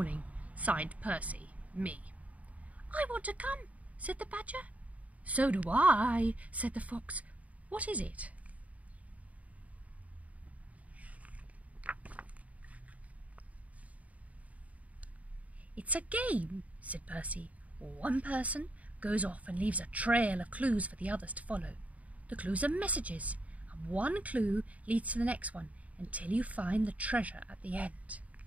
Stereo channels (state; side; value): late; left; 0.069 ms